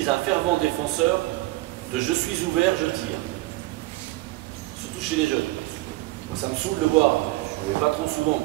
un fervent défenseur de je suis ouvert, je tire. Surtout chez les jeunes. Moi, ça me saoule de voir, je ne vais pas trop souvent,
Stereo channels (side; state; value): left; quieter; 19.8 dB